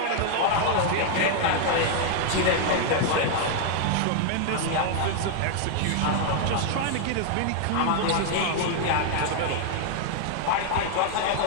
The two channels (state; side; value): different; both; correlation 0.00